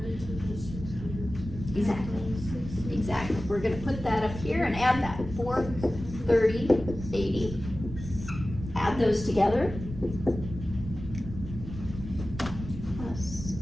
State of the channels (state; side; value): noise; right; rumble, 10 dB below the sound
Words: to the 600. Exactly. Exactly. We're gonna put that up here and add that, 430.80. Add those together. Plus